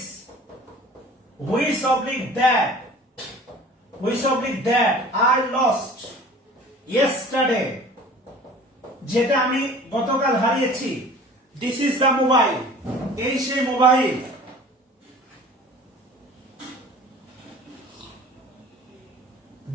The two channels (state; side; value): normal; both; correlation 0.45